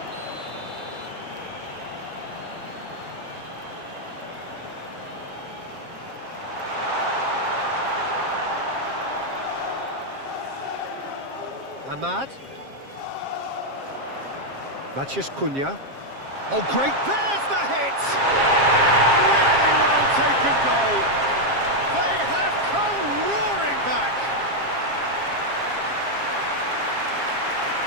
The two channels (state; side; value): late; left; 7.4 ms